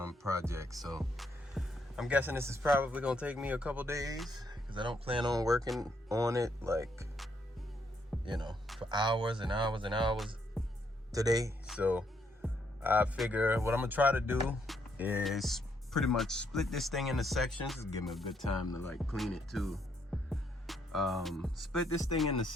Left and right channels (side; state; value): both; normal; correlation 0.74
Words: project. So I'm guessing this is probably gonna take me a couple days because I don't plan on working on it like, you know, for hours and hours and hours today. So I figure what I'm gonna try to do is pretty much split this thing into sections. Just give me a good time to like clean it too. Split this thing into